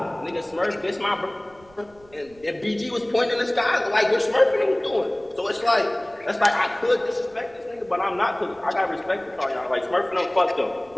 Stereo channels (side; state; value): right; noise; rumble, 27 dB below the sound